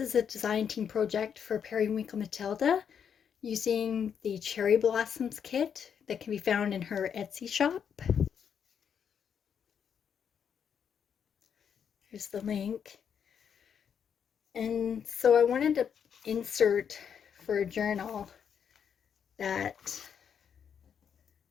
is a design team project for Periwinkle Matilda using the Cherry Blossoms kit that can be found in her Etsy shop. Here's the link. And so I wanted to insert for a journal that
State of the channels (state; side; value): quieter; right; 7.7 dB